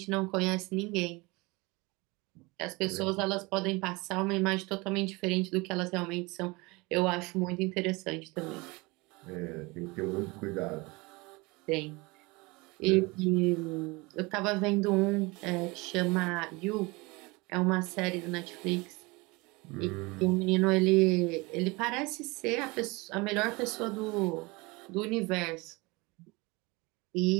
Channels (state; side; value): quieter; left; 25.0 dB